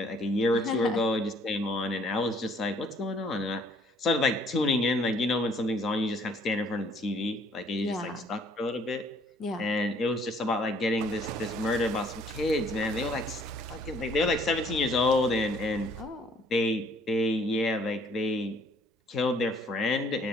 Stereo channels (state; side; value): normal; both; correlation 0.60